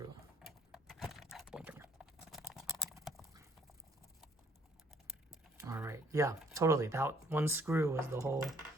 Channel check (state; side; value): normal; both; correlation 0.63